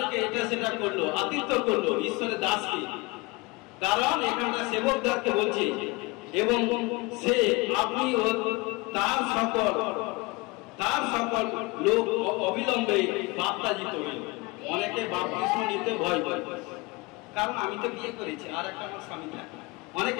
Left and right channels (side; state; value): right; quieter; 25.0 dB